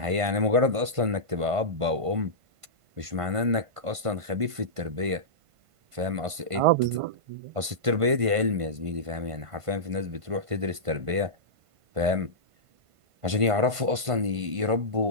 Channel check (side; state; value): left; late; 1.5 ms